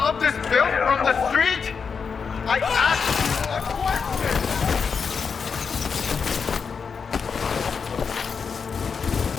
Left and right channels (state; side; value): quieter; right; 5.8 dB